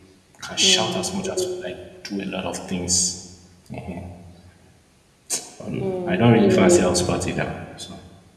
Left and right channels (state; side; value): identical; both; correlation 1.00